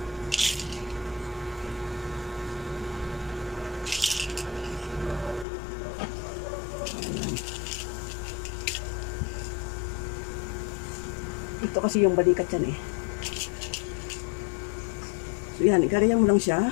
Ayan. Ito kasi yung balikat yan eh. So yan, igaganyan mo lang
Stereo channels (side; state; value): right; drops out; at 5.5 s